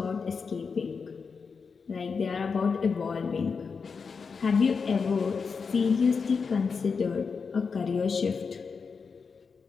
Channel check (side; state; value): right; quieter; 5.3 dB